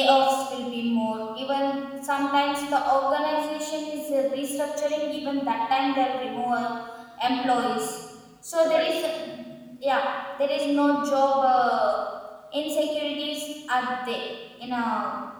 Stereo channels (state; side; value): identical; both; correlation 1.00